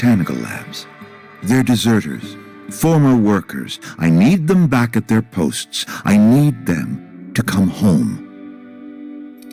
labs, they're deserters, former workers. I need them back at their posts. I need them to come home.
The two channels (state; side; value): identical; both; correlation 1.00